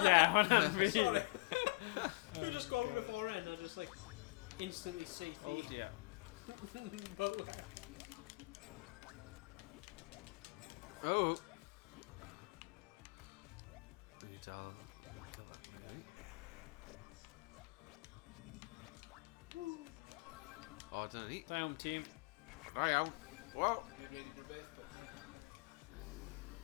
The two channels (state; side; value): quieter; right; 23.6 dB